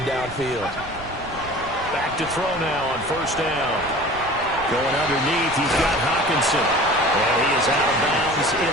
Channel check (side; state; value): right; noise; rumble, 15 dB below the sound